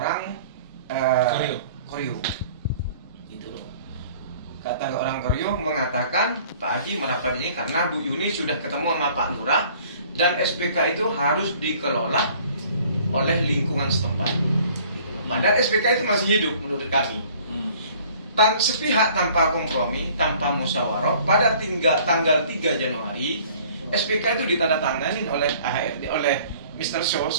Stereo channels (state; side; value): inverted; both; correlation -0.53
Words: Koryo. Kata orang Koryo mengatakan Pak Haji merapat ini karena Bu Yuni sudah ketemu sama Pak Lurah dan SPK itu harus dikelola oleh lingkungan setempat. Padahal SPK itu masih hidup menurut kami. Sepihak tanpa kompromi, tanpa musyawarah, pada tanggal 3 Januari SPK itu ditandatangani oleh AHRD, oleh Mr. Shaw